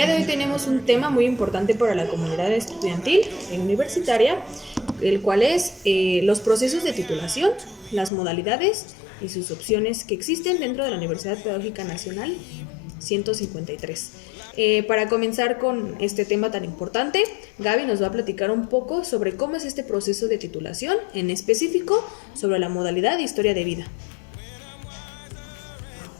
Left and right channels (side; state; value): right; drops out; at 8.1 s